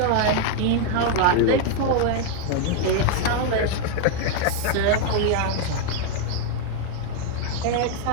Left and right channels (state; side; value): different; both; correlation 0.00